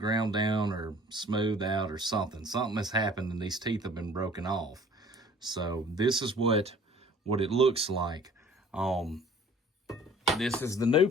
down or smoothed out or something. Something has happened and these teeth have been broken off. So this is what it looks like. This is the new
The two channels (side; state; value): both; normal; correlation 0.51